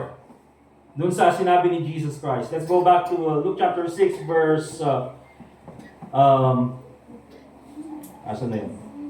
dun sa sinabi ni Jesus Christ. Let's go back to Luke chapter 6 verse asan na yun?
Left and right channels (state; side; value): identical; both; correlation 1.00